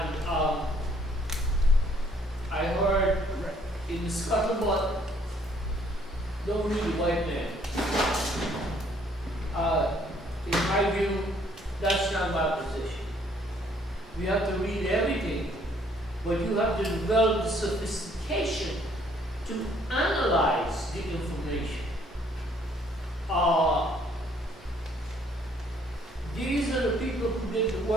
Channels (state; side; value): normal; both; correlation 0.63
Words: I heard in the scuttlebutt, don't read the white man. In my view, that's not my position. We have to read everything, but you have to develop the sophistication to analyze the information. These are the people who did the